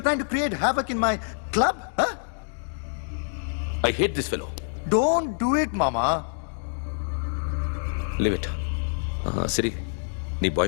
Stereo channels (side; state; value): right; silent; digital silence